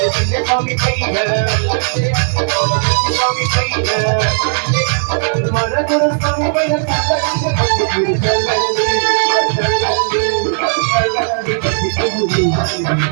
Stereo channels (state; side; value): silent; left; digital silence